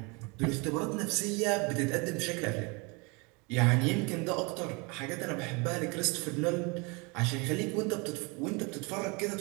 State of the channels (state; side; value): quieter; left; 29.2 dB